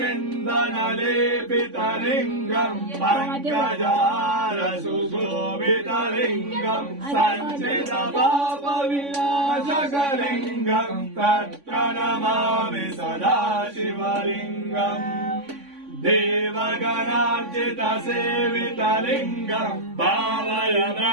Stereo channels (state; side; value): late; left; 3.5 ms